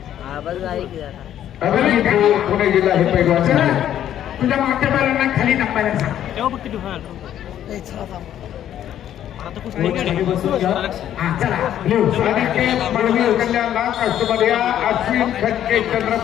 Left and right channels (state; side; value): quieter; right; 11.0 dB